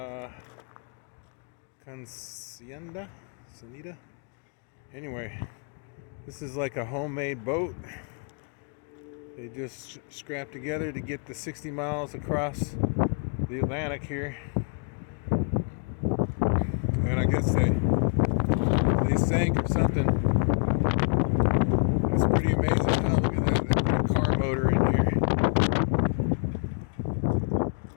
consentida. Anyway, this is like a homemade boat. They just scrapped together to get the 60 miles across the Atlantic here. And I guess they sank or something. That's pretty amazing. Oh, look at that. They put a car motor in here.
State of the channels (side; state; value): right; quieter; 39.6 dB